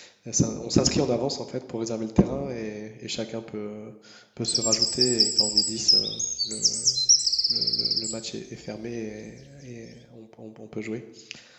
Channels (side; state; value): both; identical; correlation 1.00